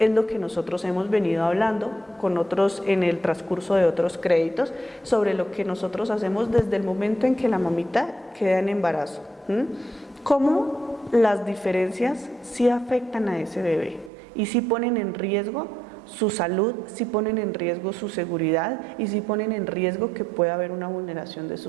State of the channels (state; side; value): drops out; left; at 14.1 s